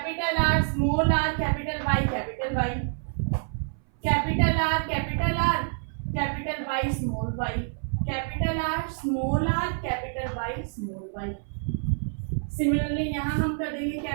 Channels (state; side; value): silent; left; 57 dB below the other